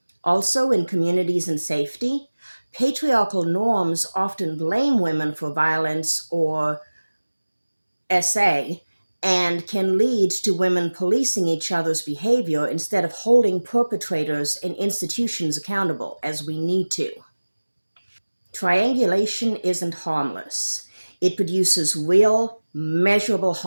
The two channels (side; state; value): both; inverted; correlation -1.00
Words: Also, in communities and safety, patriarchal norms often blame women for violence or SA and can lead to women policing each other's behavior instead of holding perpetrators and institutions accountable, as we need to. Triangulation isn't harmless. It produces real, measurable